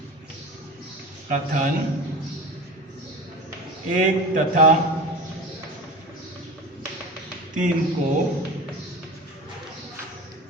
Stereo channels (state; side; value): normal; both; correlation 0.32